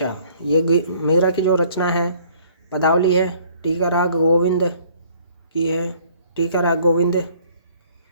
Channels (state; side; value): inverted; both; correlation -0.58